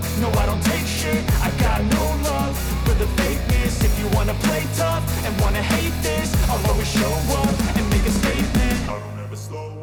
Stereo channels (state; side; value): identical; both; correlation 1.00